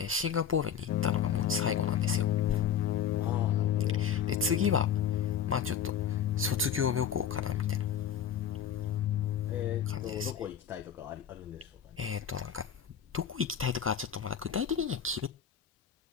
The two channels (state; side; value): quieter; right; 8.5 dB